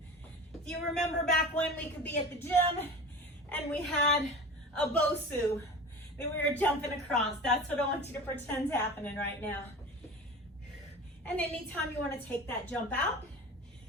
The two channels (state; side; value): normal; both; correlation 0.33